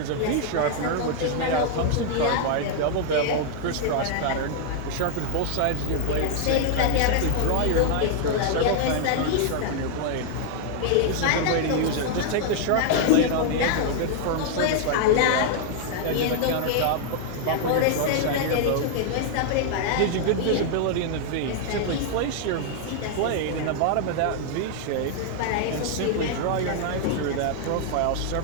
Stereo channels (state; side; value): different; both; correlation 0.00